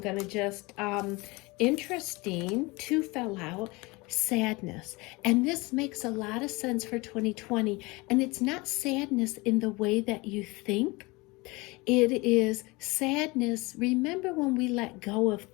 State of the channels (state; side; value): quieter; right; 24.3 dB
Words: to just, interesting, 2 fell out, sadness. And this makes a lot of sense for 2020. And it's not sadness in the way that you think. It is sadness. Remember when we let go of